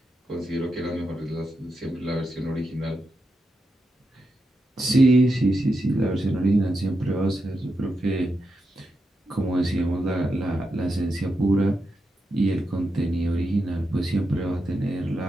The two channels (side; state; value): both; normal; correlation 0.87